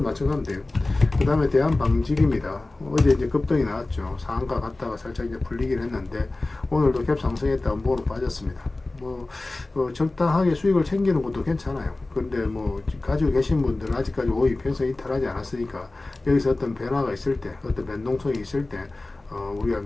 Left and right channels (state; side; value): quieter; right; 3.0 dB